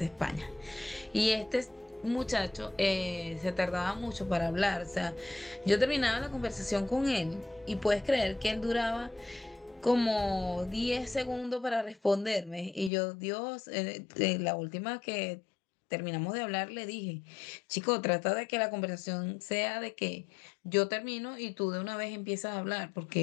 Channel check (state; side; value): drops out; right; at 12.9 s